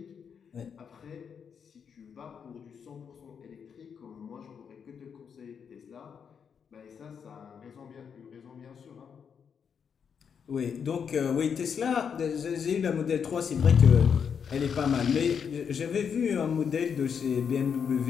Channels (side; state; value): right; quieter; 7.0 dB